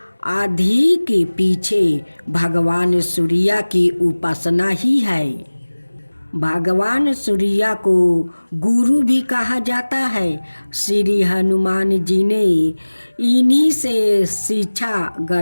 आदि के पीछे भगवान सूर्य की उपासना ही है। भगवान सूर्य को गुरु भी कहा जाता है। श्री हनुमान जी ने इन्हीं से शिक्षा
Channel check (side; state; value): both; inverted; correlation -1.00